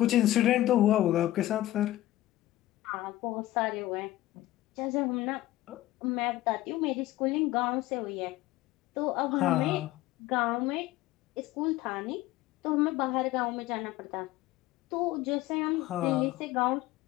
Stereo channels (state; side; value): quieter; right; 15.7 dB